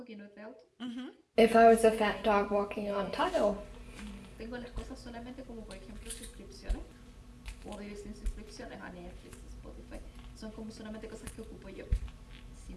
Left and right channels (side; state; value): both; identical; correlation 1.00